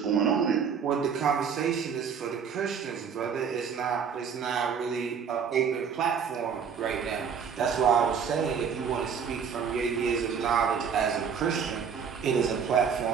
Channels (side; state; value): left; quieter; 6.8 dB